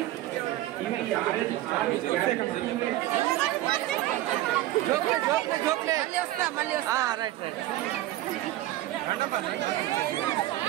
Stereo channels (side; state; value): left; quieter; 15.4 dB